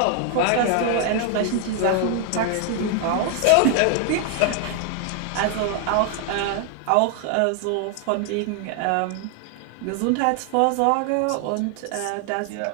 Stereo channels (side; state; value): both; different; correlation 0.00